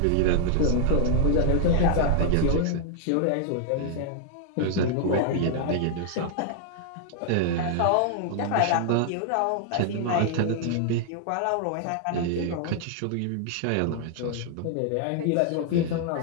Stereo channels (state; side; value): different; both; correlation -0.01